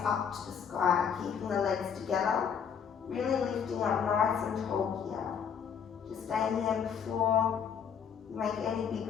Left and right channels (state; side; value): quieter; right; 7.4 dB